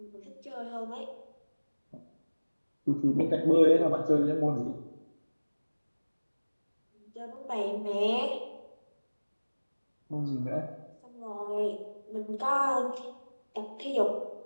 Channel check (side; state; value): both; inverted; correlation -1.00